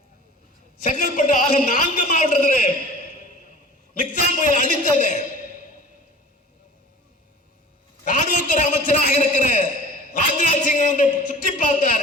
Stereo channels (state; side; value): normal; both; correlation 0.42